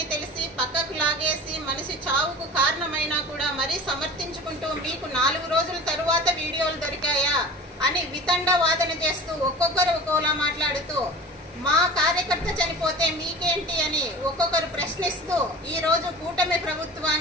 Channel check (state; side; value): normal; both; correlation 0.37